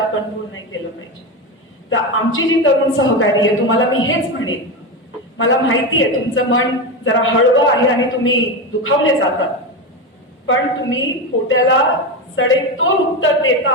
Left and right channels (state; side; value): normal; both; correlation 0.16